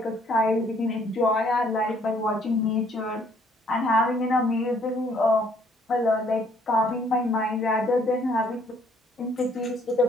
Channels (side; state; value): both; normal; correlation 0.64